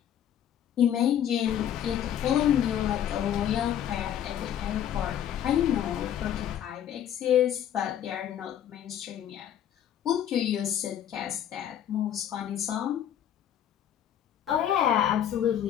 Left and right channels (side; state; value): right; quieter; 10.1 dB